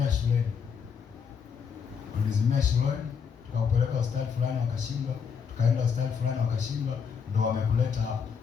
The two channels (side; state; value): right; quieter; 6.5 dB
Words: shuleni. Tukakupeleka hospitali fulani wakashindwa, tukaenda hospitali fulani wakashindwa, ndo wamekuleta hapa.